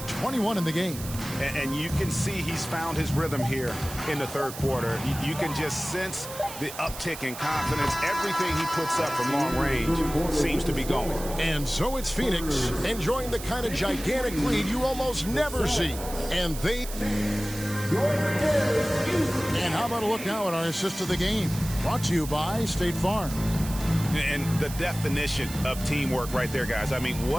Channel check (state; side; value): noise; right; hiss, 11 dB below the sound